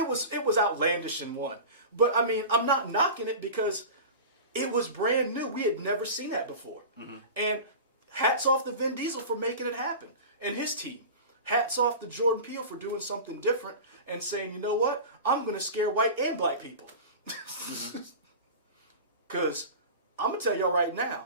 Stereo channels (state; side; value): inverted; both; correlation -0.32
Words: was outlandish in 1. But I mean, I'm not knocking it because it was brand new. We had never seen that before. And hats off to Vin Diesel for making it happen and his team. Hats off to Jordan Peele for doing something different and saying, you know what? I'm going to scare white and black people. Because I'm going to tell y'all right now,